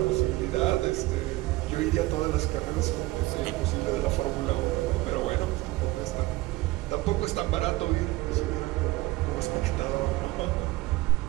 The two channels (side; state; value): left; quieter; 19.4 dB